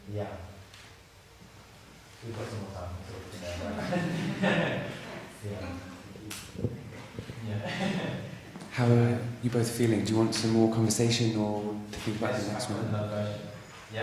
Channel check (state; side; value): identical; both; correlation 1.00